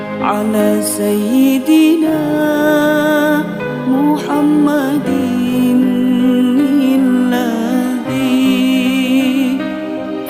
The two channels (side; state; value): both; identical; correlation 1.00